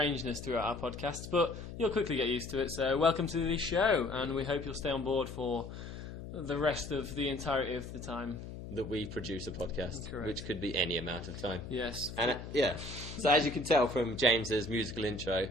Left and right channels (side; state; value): left; noise; hum, 10 dB below the sound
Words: throughout our podcasts, but you'll quickly get used to it. So welcome to the show, and we hope you'll stay on board for the rest of the entirety of the time that we produce a podcast. Correct. Which could be any amount of time. Yes. And so as you can tell from James's musical intro,